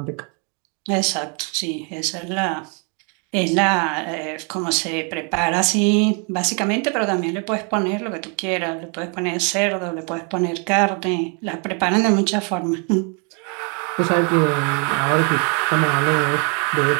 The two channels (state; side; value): quieter; left; 36.9 dB